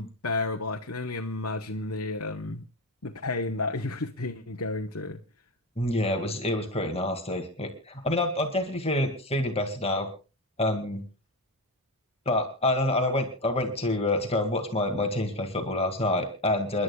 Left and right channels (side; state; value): both; normal; correlation 0.16